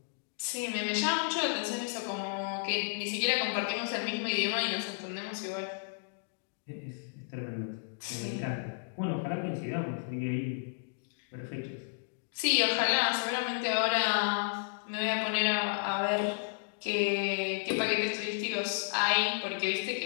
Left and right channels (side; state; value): right; silent; digital silence